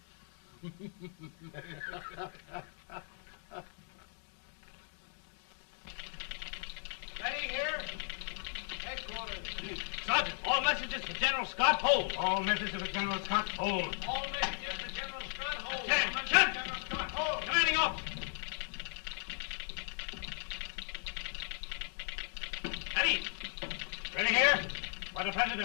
Ready here. Headquarters. Sergeant, all messages for General Scott, hold. All messages for General Scott, hold. All messages for General Scott, hold. General Scott, hold. Commanding officer. Ready. Ready here. For the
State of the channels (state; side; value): silent; right; 53 dB below the other